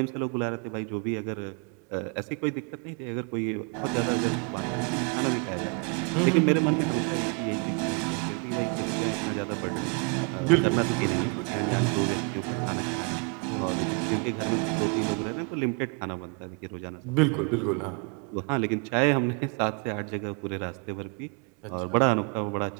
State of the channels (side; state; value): left; quieter; 36.2 dB